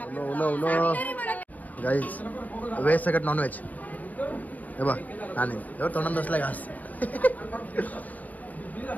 गाईस व्हेज सगळं नॉन व्हेज. हे बघ आणि एवढं तोंडात बसलाय घास.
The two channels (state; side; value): late; right; 0.077 ms